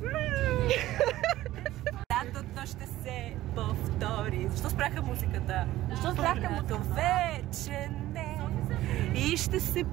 Лятото ще се повтори. Защо спряха музиката? Защо спряха музиката? Вече не. И ще се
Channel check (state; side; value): quieter; left; 15.3 dB